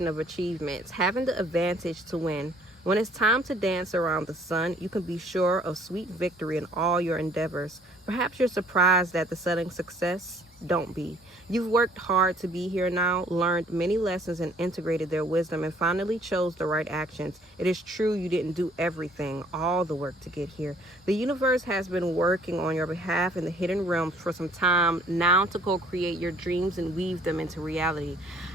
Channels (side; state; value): both; normal; correlation 0.59